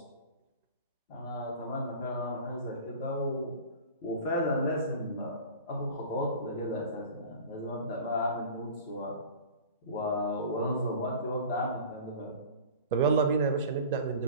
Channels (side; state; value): both; inverted; correlation -0.39